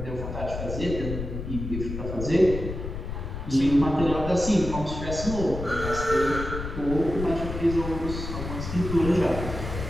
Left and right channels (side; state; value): left; noise; rumble, 6 dB below the sound